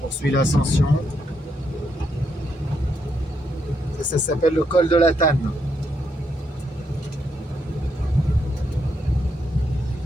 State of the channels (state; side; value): normal; both; correlation 0.78